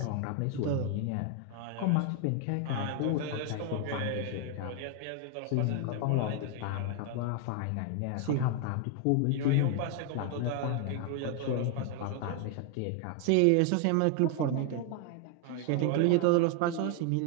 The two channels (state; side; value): different; both; correlation 0.00